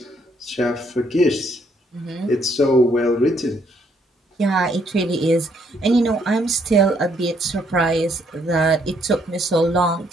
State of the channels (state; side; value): normal; both; correlation 0.70